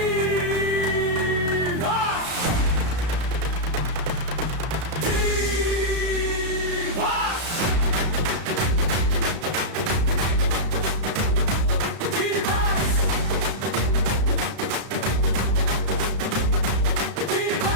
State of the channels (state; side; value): late; left; 33 ms